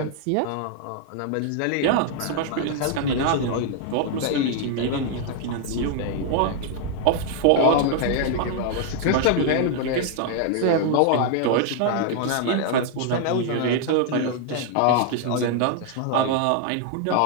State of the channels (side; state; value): both; different; correlation 0.00